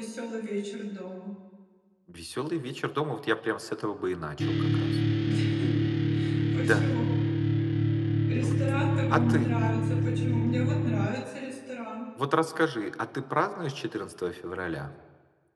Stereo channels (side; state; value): both; identical; correlation 1.00